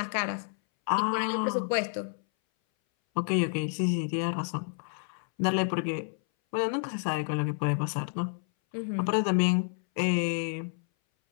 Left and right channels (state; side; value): silent; right; 58 dB below the other